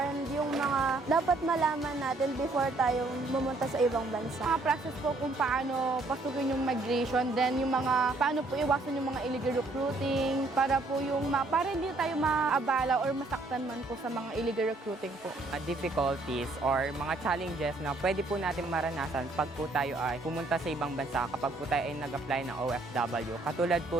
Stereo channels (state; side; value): quieter; left; 3.1 dB